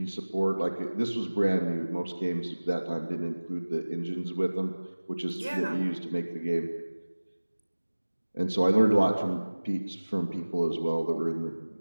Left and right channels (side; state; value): both; inverted; correlation -1.00